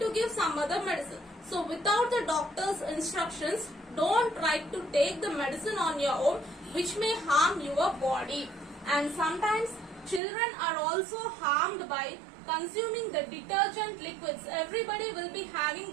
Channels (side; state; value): left; drops out; at 10.2 s